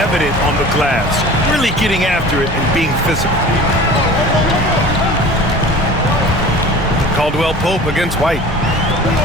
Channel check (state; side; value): normal; both; correlation 0.41